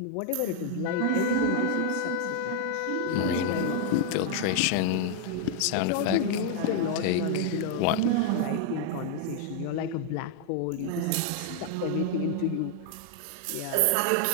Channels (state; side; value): different; both; correlation 0.00